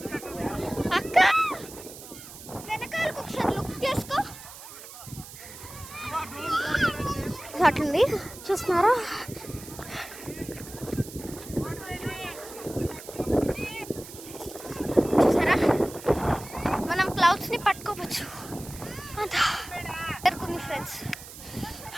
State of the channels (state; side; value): noise; right; hiss, 15 dB below the sound